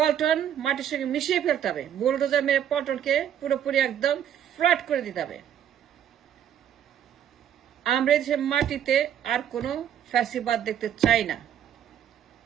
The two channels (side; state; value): left; quieter; 9.7 dB